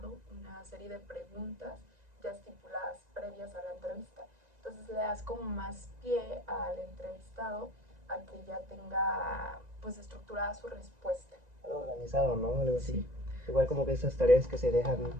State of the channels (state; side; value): late; left; 1.9 ms